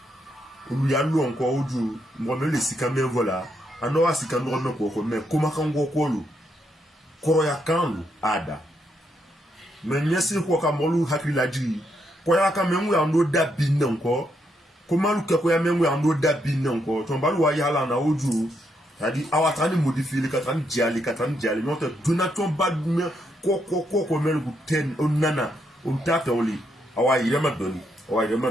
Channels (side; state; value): both; normal; correlation 0.78